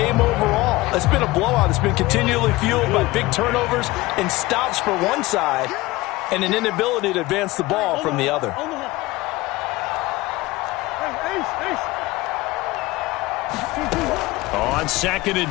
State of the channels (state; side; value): quieter; right; 20.1 dB